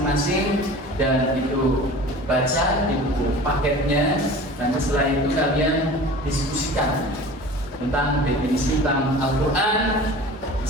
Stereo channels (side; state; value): both; normal; correlation 0.39